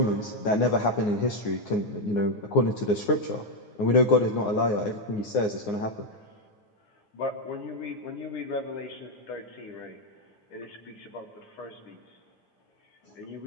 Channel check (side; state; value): right; late; 9.6 ms